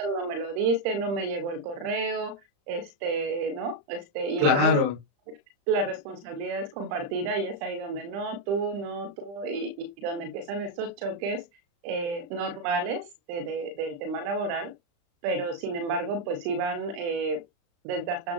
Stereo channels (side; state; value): left; late; 35 ms